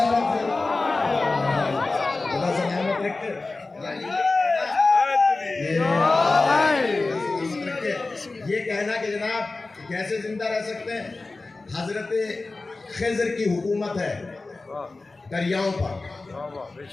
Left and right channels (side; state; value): right; quieter; 3.5 dB